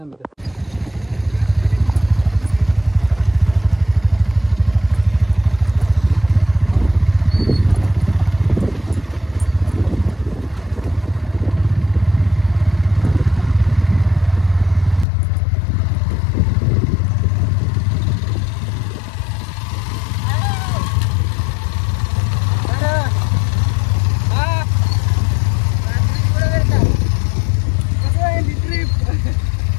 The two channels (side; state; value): right; drops out; at 15.1 s